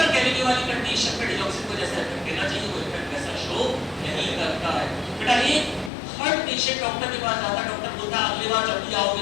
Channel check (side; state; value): right; drops out; at 5.9 s